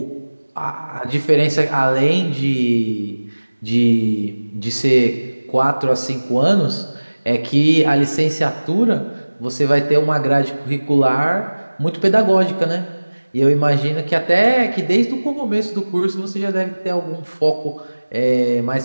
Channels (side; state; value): both; inverted; correlation -1.00